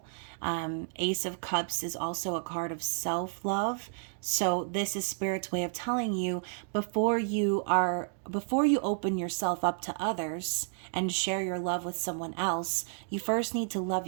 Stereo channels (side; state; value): left; silent; digital silence